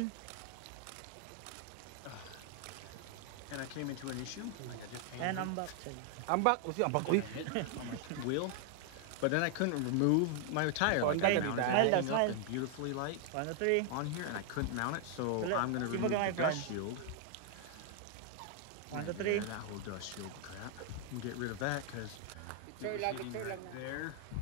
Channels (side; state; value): both; different; correlation 0.00